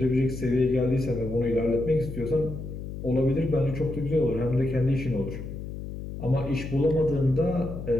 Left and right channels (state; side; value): noise; left; hum, 8 dB below the sound